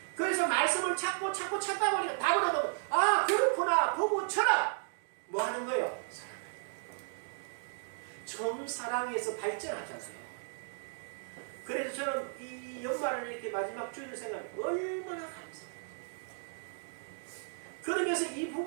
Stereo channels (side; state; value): left; silent; digital silence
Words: 그래서 말씀을 찾다 보니까 답을 얻어. 아 그렇구나. 부부처럼 뭐 하는 거예요? 처음 사랑해서 발전하잖아요. 그래서 저는 이 연말을 이렇게 마지막 주일을 생각하면 얼마나 감사해요. 그러면서 이